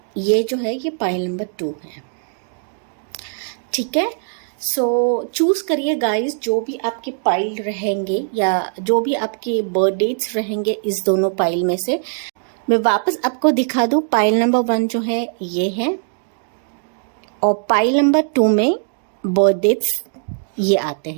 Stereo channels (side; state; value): left; silent; digital silence